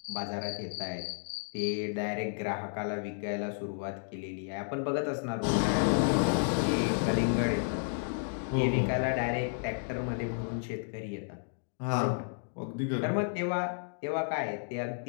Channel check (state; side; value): silent; right; digital silence